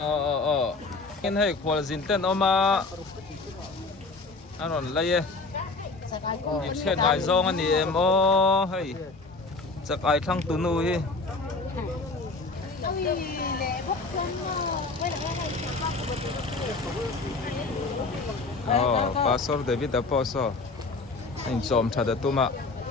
in hei khwal zin ten oma anon laye ik chen ngai zong ani em o hei chak ai thang tu nu hi Pastor David Aposo in chom thada tuma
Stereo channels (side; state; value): right; quieter; 3.7 dB